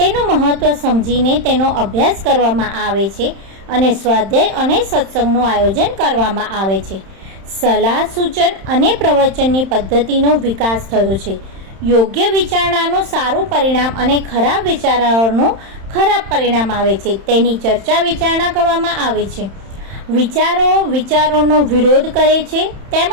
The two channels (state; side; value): late; left; 31 ms